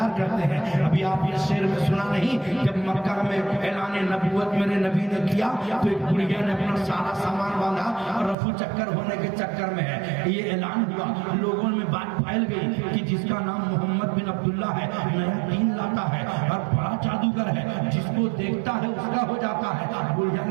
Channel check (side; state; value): left; drops out; at 8.3 s